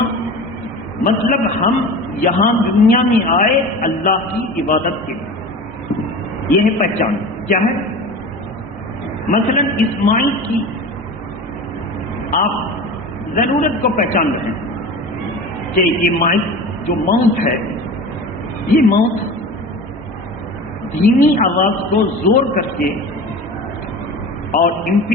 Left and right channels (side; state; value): both; normal; correlation 0.34